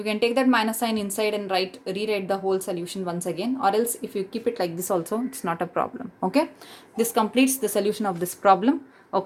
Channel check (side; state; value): both; identical; correlation 1.00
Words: can take that minus sign inside and rewrite the whole solution once again, or else if you keep it like this also, it's not a problem. Okay, this completes the solution of this problem.